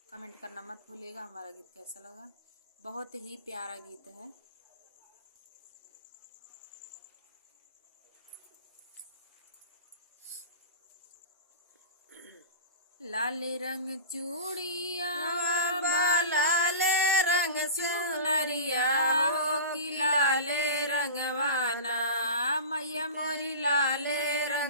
कमेंट करना मत भूलिएगा हमारा गीत कैसा लगा। बहुत ही प्यारा गीत है। लाले रंग चूड़िया लाले रंग चुनरिया हो कि लाले रंगवाना मैया मोरी लाले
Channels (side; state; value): both; inverted; correlation -0.32